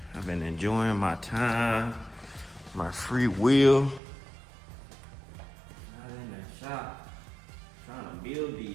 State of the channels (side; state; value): left; drops out; at 4.0 s